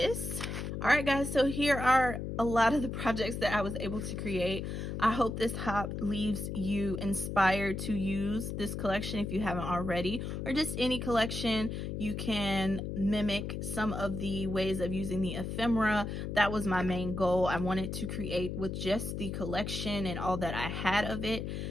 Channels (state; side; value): noise; left; hum, 4 dB below the sound